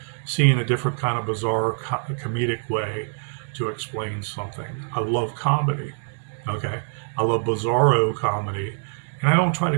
seeing a different kind of bizarre comedic way to explain something. I love comedy. Okay. I love bizarro comedy. And I don't try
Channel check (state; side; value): silent; left; digital silence